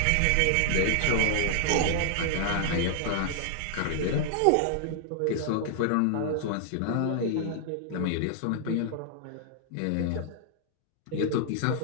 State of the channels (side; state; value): both; different; correlation -0.01